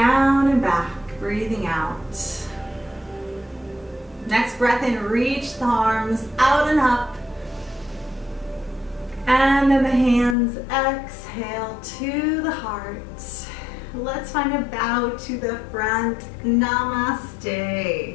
and back, breathing out. Next breath in, reach the arms out and up. And then the hands exhale to the heart. Let's find a bow to the front.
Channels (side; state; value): right; drops out; at 10.4 s